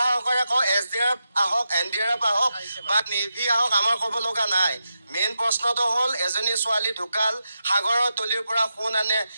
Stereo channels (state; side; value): inverted; both; correlation -0.87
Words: সহকাৰে কওঁ, SDRF আহক, NDRF আহক বা নেভি আহক, আমাৰ ক'ব লগা নাই। মেইন প্ৰশ্নটো হ'ল, এজনী ছোৱালী ঢুকাল, সাগৰৰ তলিৰ পৰা সোণ আনে,